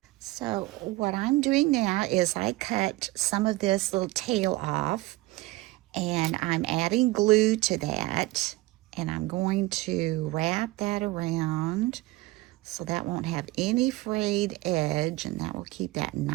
So what I'm doing now is I cut some of this little tail off and I'm adding glue to that, and I'm going to wrap that around so that won't have any frayed edge, and that will keep that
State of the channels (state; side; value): quieter; left; 19.9 dB